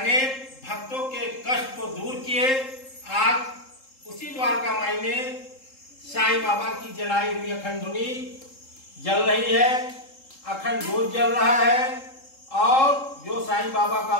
भक्तों के कष्ट को दूर किए। आज उसी द्वारका माई में साईं बाबा की जलाई हुई अखंड धुनी जल रही है, अखंड जोत जल रहा है, और जो साईं बाबा का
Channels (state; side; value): late; right; 3.7 ms